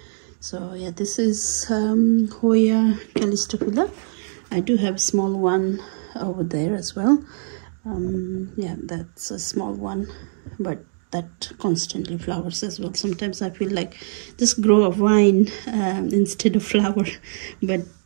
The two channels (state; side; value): silent; left; digital silence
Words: So yeah, this is Hoya Collection. I do have a small one over there as well. Yeah, that's a small one, but that constantly flowers as well. Sometimes I feel like just grow a vine instead of flower, but